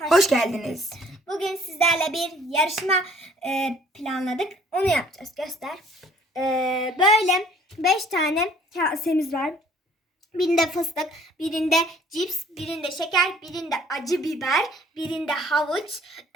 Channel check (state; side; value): normal; both; correlation 0.57